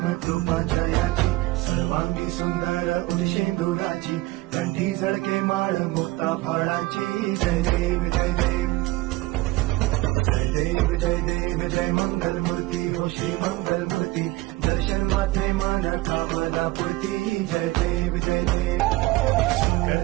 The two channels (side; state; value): left; quieter; 19.4 dB